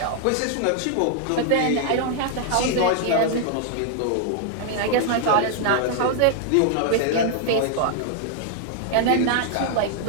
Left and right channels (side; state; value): both; different; correlation -0.01